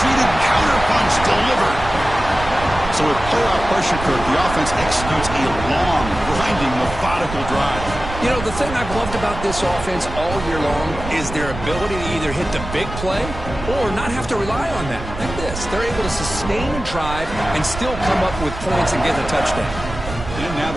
counterpunch delivered. So with playoff pressure, Kirk, the offense executes a long, grinding, methodical drive. You know, the thing I've loved about this offense all year long is their ability to either hit the big play or not have to rely on that. Like this. They're able to sustain a drive and still come up with points and get a touchdown. And now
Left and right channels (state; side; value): noise; right; rumble, 9 dB below the sound